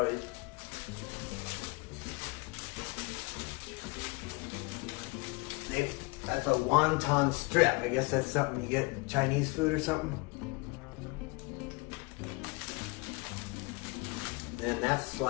That's a wonton strip. I guess that's something you get in Chinese food or something. Then that's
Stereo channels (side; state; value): right; quieter; 27.4 dB